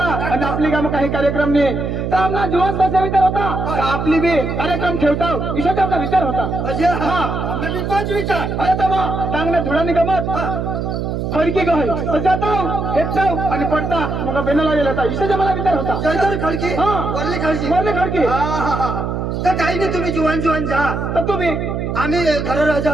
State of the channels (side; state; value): right; noise; hum, 3 dB below the sound